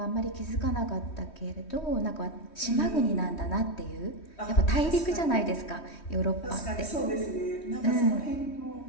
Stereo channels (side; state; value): right; late; 3.1 ms